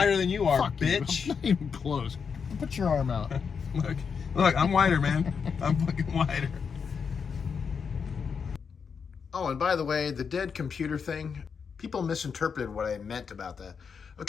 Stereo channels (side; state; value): right; quieter; 6.1 dB